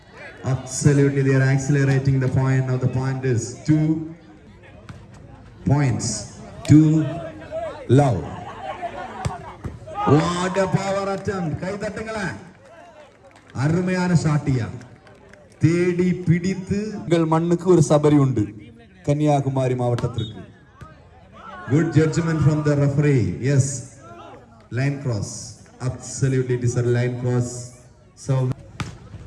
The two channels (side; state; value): both; identical; correlation 1.00